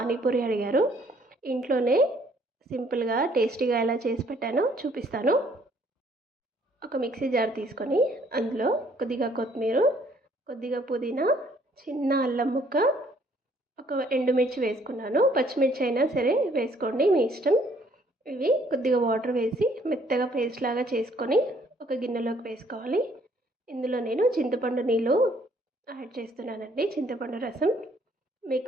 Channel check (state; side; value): normal; both; correlation 0.63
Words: అడిగారు. ఇంట్లోనే సింపుల్గా టేస్టీగా ఎలా చేసి పెట్టానో చూపిస్తాను. ఒక మిక్సీ జార్ తీసుకొని అందులో కొద్దిగా కొత్తిమీర, కొద్దిగా పుదీనా, చిన్న అల్లం ముక్క, ఒక ఎండుమిర్చి వేసుకున్నాను. పచ్చిమిర్చి అయినా సరే వేసుకోండి, మీ ఇష్టం. ఇవి కొద్దిగా వాటర్ వేసి మెత్తగా పేస్ట్ లాగా చేసుకొని ఒక గిన్నెలోకి వేసుకోవాలి. ఇందులో నేను చింతపండు నీళ్ళు యాడ్ చేస్తున్నానండి, చింతపండు రసం.